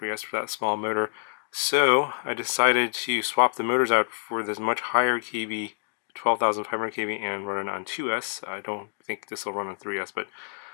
for that small motor. So I decided to swap the motors out for this much higher kV, 12,500 kV, and run it on 2S. I don't think this will run on 3S, but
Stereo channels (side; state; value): right; silent; 60 dB below the other